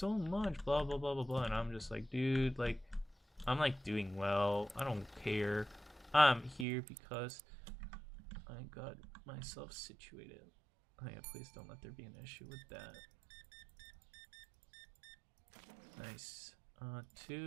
much, blah blah blah blah blah, and I'm just like, dude, like I'm like doing well, I don't care, I'm here because I got myself situated. Oh yeah, please don't let there be an issue with that. Nice.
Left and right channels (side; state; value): left; drops out; at 6.7 s